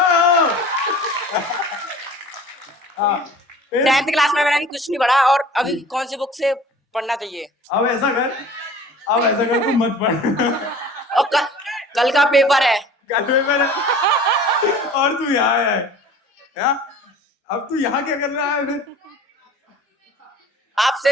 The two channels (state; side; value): normal; both; correlation 0.44